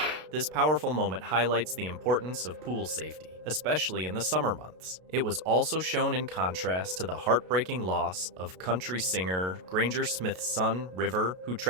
This powerful moment highlights the importance of pool safety, especially in the summer months. It was also shown in contrast to the heartbreaking loss of country singer Granger Smith's son, River, who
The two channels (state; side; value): late; left; 32 ms